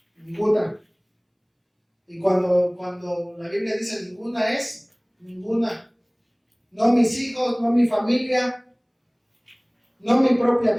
ninguna. Y cuando la Biblia dice ninguna, es ninguna. No mis hijos, no mi familia, no mi propia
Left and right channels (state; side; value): identical; both; correlation 1.00